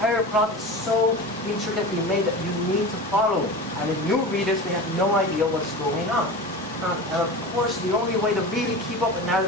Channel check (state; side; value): normal; both; correlation 0.30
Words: plot is so intricately made that you need to follow it. And if new readers, they have no idea what's going on. And of course, the only way to really keep up with